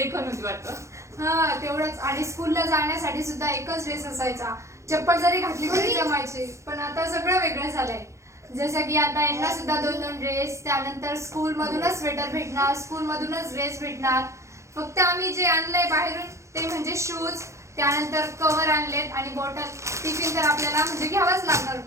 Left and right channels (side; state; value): left; late; 0.14 ms